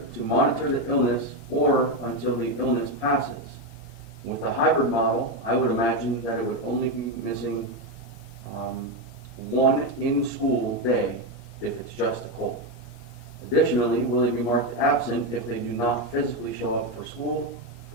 the illness or until the illness passes? With the hybrid model, I would imagine that it would only be missing one in-school day if it's just a cold. Additionally, will they be marked absent if they do not physically show up for school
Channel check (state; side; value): late; right; 8.6 ms